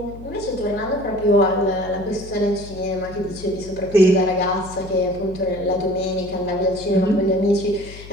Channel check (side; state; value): left; noise; hum, 16 dB below the sound